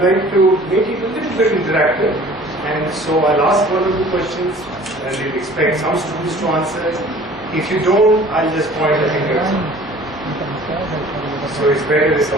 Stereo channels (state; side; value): noise; left; hum, 24 dB below the sound